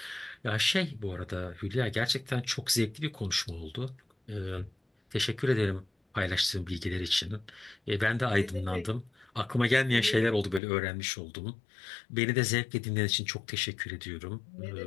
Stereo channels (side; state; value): right; drops out; at 10.6 s